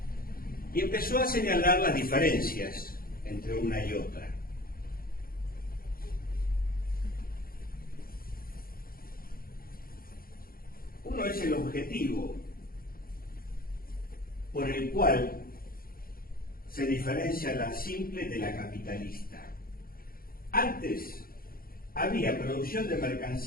Y empezó a señalar las diferencias entre una y otra. Uno es el objetivo por el cual se diferencia la simple de la capitalista. Antes había producción de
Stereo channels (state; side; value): late; right; 0.42 ms